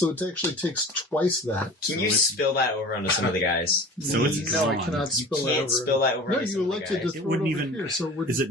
it actually takes twice that. Can you spill that over onto some of the guys? So it's no, I gone. cannot You spill that can't over. spill that over No, onto you some of the elected to guys. throw It wouldn't it over even- here. So we're, Is it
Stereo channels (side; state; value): both; normal; correlation 0.40